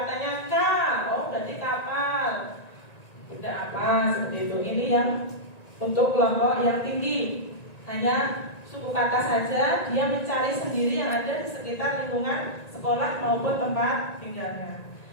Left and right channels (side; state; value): right; late; 1.9 ms